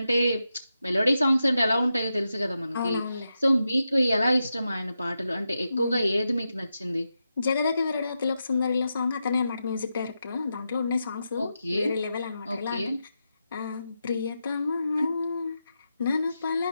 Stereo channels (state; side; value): inverted; both; correlation -0.88